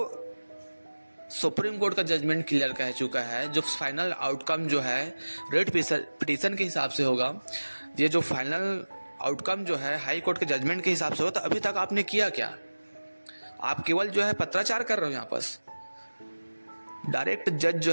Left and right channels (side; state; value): both; inverted; correlation -1.00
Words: सुप्रीम कोर्ट का जजमेंट क्लियर कह चुका है, जो फाइनल आउटकम जो है रेट पिटीशन के हिसाब से होगा, ये जो फाइनल आउटकम जो है हाई कोर्ट के जजमेंट के हिसाब से होगा, तो अभी तक आपने किया क्या? आप केवल जो है पत्राचार कर रहे हो। यहाँ पर डायरेक्ट जज